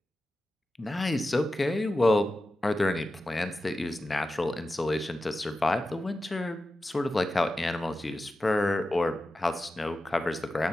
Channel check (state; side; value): normal; both; correlation 0.92